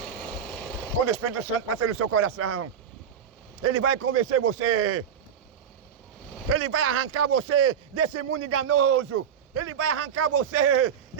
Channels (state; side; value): quieter; left; 8.1 dB